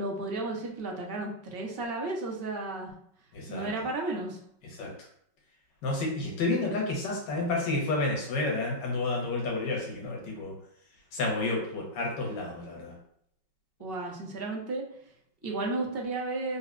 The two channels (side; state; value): right; late; 5.4 ms